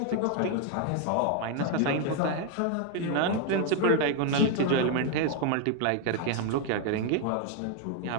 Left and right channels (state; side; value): different; both; correlation 0.01